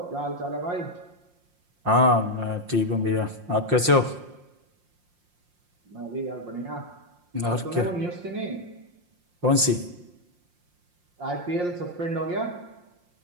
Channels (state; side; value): late; left; 5.7 ms